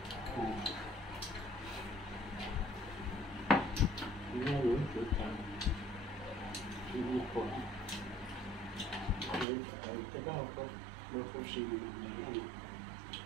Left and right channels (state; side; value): drops out; left; at 9.5 s